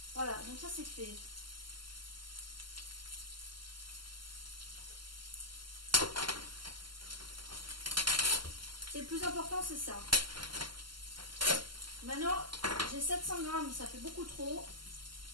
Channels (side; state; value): left; late; 0.72 ms